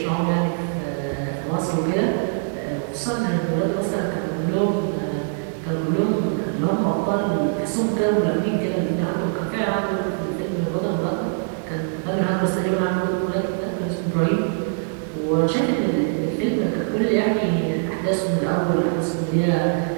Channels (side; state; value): left; silent; digital silence